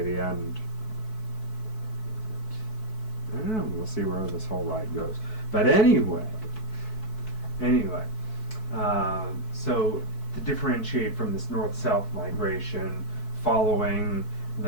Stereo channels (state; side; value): late; right; 4.6 ms